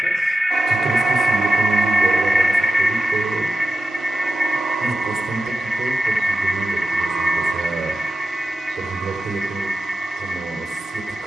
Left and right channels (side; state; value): both; normal; correlation 0.92